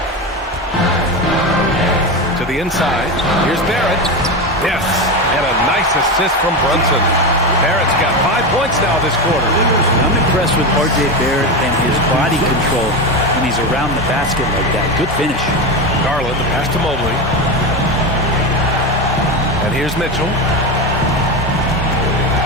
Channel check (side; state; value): both; normal; correlation 0.18